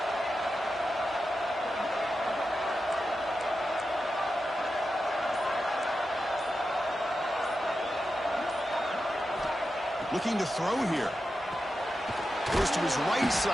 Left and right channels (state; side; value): normal; both; correlation 0.90